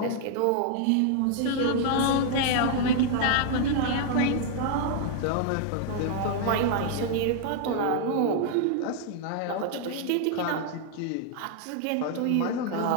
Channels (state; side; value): different; both; correlation 0.00